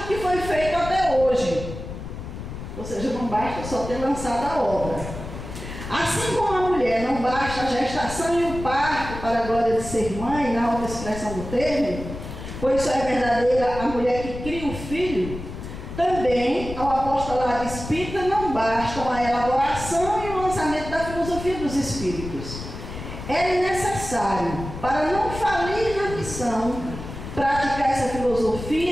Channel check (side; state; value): left; noise; rumble, 10 dB below the sound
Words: que foi feito até hoje, ou seja, não basta só ter lançado a obra. Assim como a mulher não basta a gestação e o parto para a glória de ser mãe, na outra expressão do termo, pois só é verdadeira a mulher que cria o filho, também ao apostolado espírita não bastam a elaboração e o lançamento da filosofia dos espíritos. É necessário, para não falir na missão, praticar essa